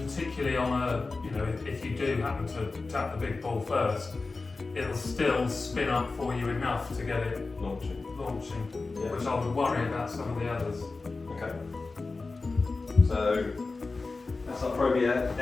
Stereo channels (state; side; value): quieter; right; 3.8 dB